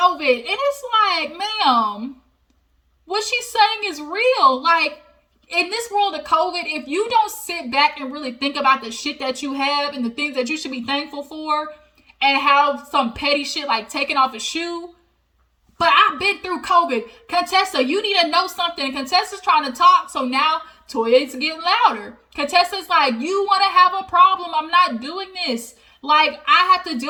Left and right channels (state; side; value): identical; both; correlation 1.00